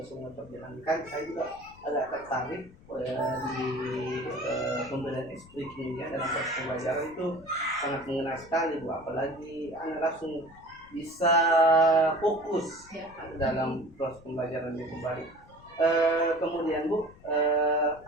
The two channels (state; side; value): noise; left; rumble, 23 dB below the sound